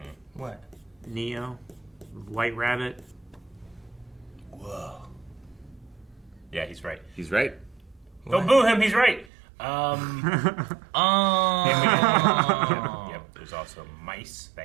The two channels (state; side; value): drops out; left; at 9.2 s